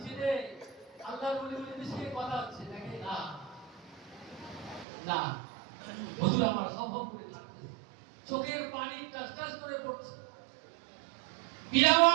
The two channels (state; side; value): drops out; left; at 4.9 s